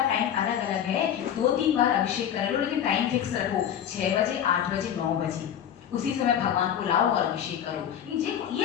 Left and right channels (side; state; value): right; quieter; 9.5 dB